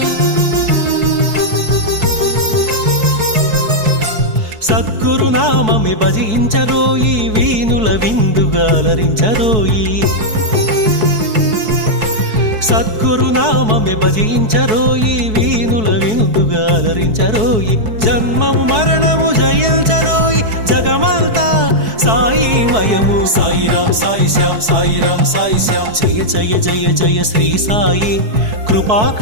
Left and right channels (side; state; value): left; late; 4.6 ms